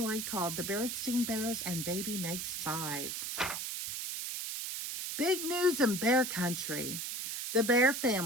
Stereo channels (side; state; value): right; noise; hiss, 4 dB below the sound